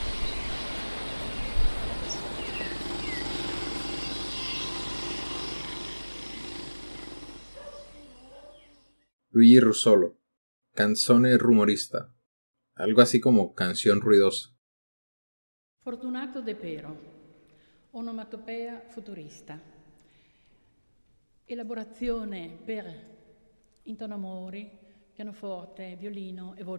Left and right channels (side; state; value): both; inverted; correlation -1.00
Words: Luigi Russolo, canzone rumorista, algo así como canción ruidosa. Fortunato De Pero, onomatopea futurista. Elaborazione per intonamori, pianoforte, violino e